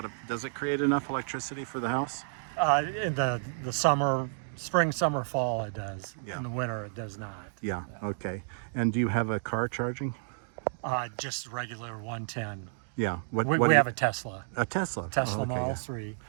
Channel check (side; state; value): left; silent; digital silence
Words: of, does it create enough electricity for the house? In the summer, spring, summer, fall, it does. Yeah. In the winter, it does not. Yeah, okay. And do you have a car charging? Just regular 110. Yeah. We have a Tesla. A Tesla? Tesla Oh, okay, Model yeah. 3.